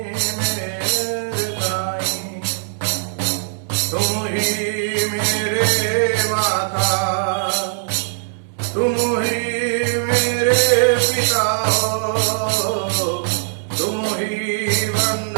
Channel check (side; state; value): left; silent; digital silence